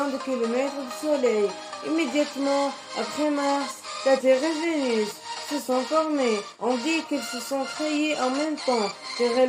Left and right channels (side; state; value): both; identical; correlation 1.00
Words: de kilomètres du Soleil. Immédiatement après Mars, la Terre et Vénus se sont formées. On dit qu'elles se sont créées en même temps, car